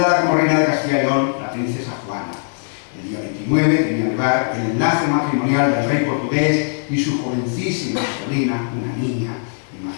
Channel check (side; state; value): right; silent; digital silence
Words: como reina de Castilla y León la princesa Juana. El día 29 tenía lugar el enlace matrimonial del rey portugués y su jovencísima sobrina, una niña.